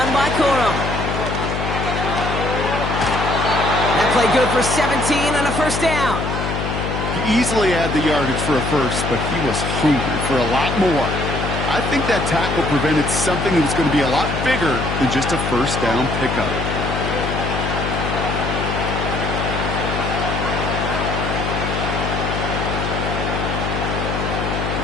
by Corum. That play good for 17 and a first down. He easily had the yardage for a first, but he was hungry for a lot more. I think that tackle prevented something that was going to be a lot bigger than just a first down pickup.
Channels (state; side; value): noise; left; hum, 3 dB below the sound